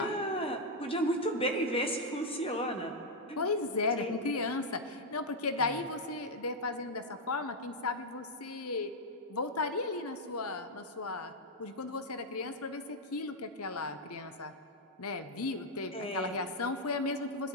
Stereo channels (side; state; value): both; normal; correlation 0.00